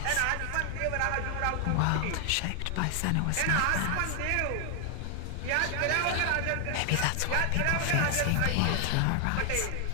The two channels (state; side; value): different; both; correlation 0.00